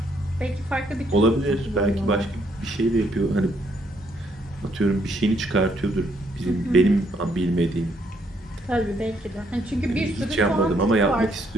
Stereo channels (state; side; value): normal; both; correlation 0.71